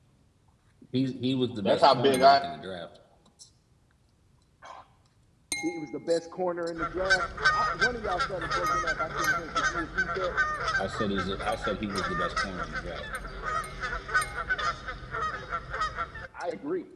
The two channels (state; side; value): identical; both; correlation 1.00